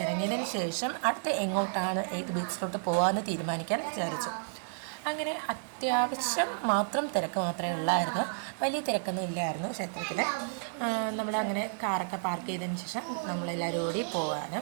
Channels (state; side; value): silent; left; 57 dB below the other